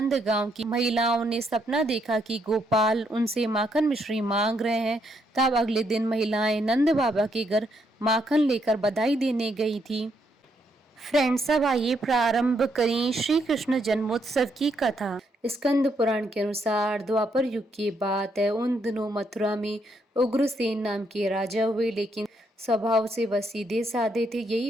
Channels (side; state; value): both; normal; correlation 0.75